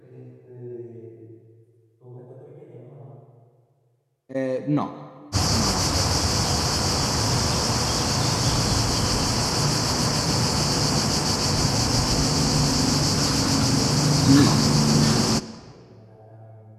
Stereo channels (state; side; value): identical; both; correlation 1.00